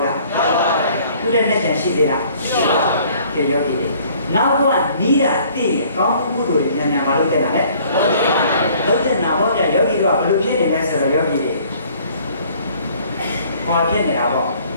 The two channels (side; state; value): both; inverted; correlation -0.57